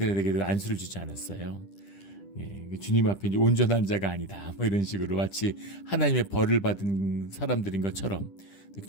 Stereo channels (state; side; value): late; right; 10 ms